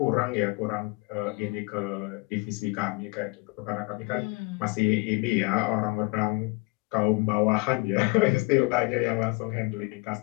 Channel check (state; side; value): quieter; right; 26.9 dB